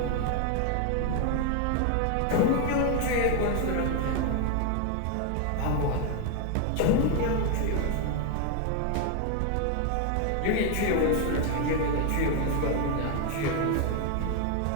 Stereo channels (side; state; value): both; different; correlation 0.01